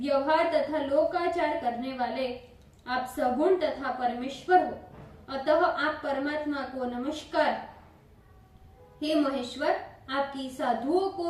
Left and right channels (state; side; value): identical; both; correlation 1.00